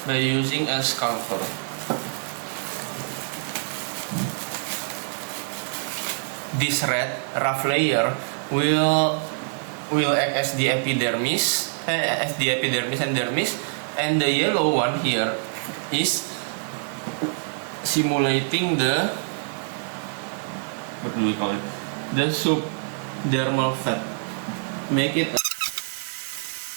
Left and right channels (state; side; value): silent; left; digital silence